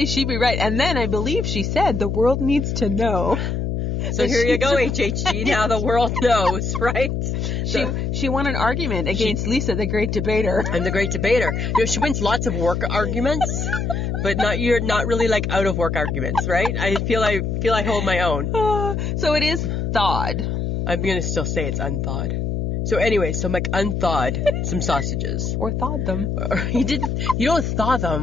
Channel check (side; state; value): left; noise; hum, 1 dB below the sound